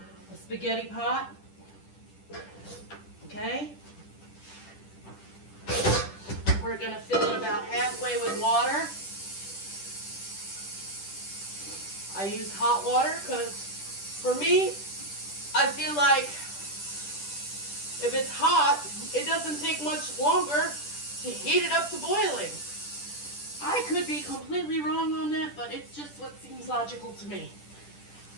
spaghetti pot. Okay. We're gonna fill it about halfway with water. I use hot water because for me, I feel like if it's hot, it doesn't take much longer to heat it up to boiling. I could be completely wrong on that, but it's just what seems logical to me.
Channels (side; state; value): right; late; 10 ms